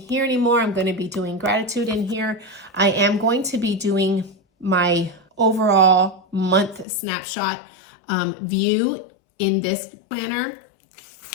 anymore, I'm going to be doing gratitude in here. I am going to be doing my overall month snapshot view in this planner,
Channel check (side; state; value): right; drops out; at 6.9 s